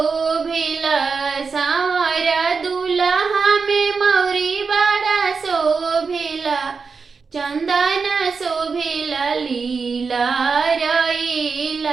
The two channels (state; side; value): quieter; left; 5.0 dB